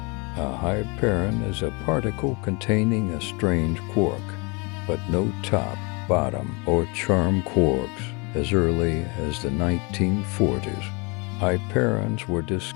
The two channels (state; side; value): quieter; right; 29.8 dB